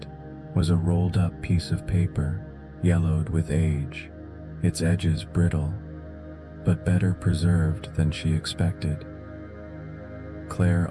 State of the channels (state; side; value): identical; both; correlation 1.00